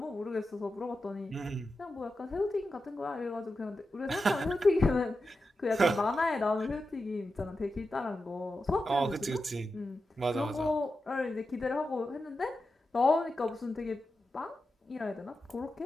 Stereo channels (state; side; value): normal; both; correlation 0.90